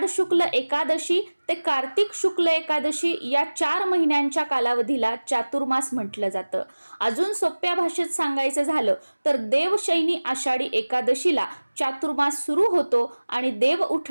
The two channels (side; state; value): both; inverted; correlation -1.00